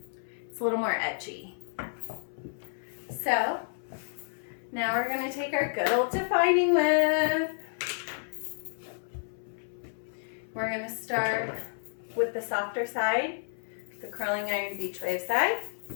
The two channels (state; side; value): silent; right; 57 dB below the other